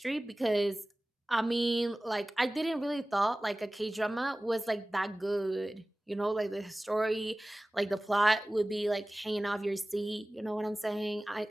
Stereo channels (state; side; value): normal; both; correlation 0.98